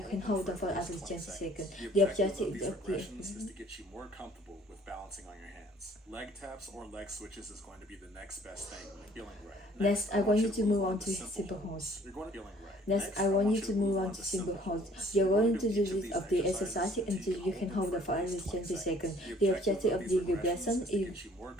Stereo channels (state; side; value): normal; both; correlation 0.57